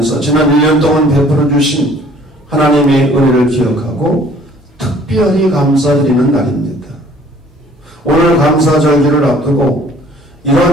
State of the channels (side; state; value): both; normal; correlation 0.56